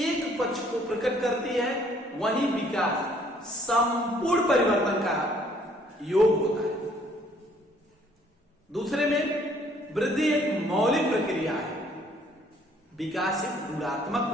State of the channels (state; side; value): normal; both; correlation 0.62